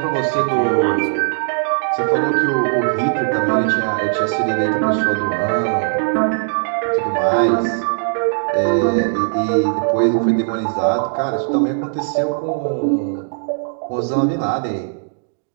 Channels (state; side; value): silent; left; digital silence